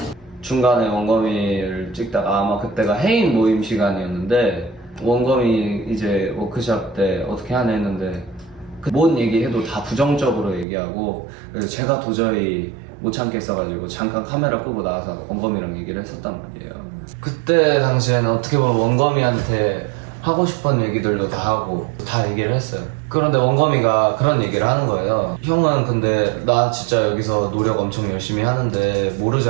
중간에 원거미를 찍다가 아마 그때가 해인 모임 시간이었는데, 원거미 이제 워크샵 때 어떻게 하냐 했는데 뭔 얘기해도 다 부정적으로 얘기하고, 그래서 제가 도저히 못 참겠어가지고 잠깐 카메라 끄고 나와서 원거미랑 얘기를 했었단 말이에요. 그때 당시에는 어떻게 보면 원거미한테 하고 싶은 얘기들도 다 하고 다 얘기를 했어요. 그런데 원거미가 그런 얘기를 하는 거예요. 형은 근데 나 진짜 여기서 노력 엄청 열심히 하는데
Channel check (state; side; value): drops out; left; at 10.7 s